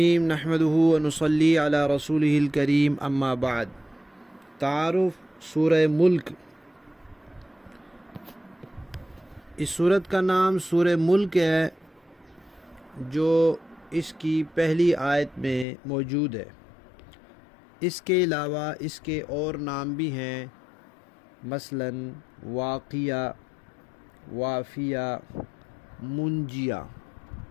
نحمدہ ونصلی علی رسولہ الکریم اما بعد۔ تعارف سورہ ملک۔ اس سورت کا نام سورہ ملک ہے جو اس کی پہلی آیت میں موجود ہے۔ اس کے علاوہ اس کے اور نام بھی ہیں، مثلاً واقیہ، وافیہ، منجیہ۔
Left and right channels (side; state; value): right; drops out; at 15.7 s